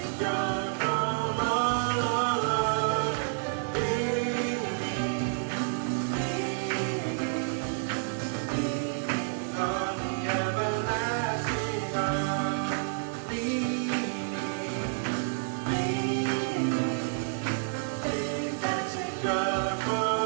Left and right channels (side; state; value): left; silent; digital silence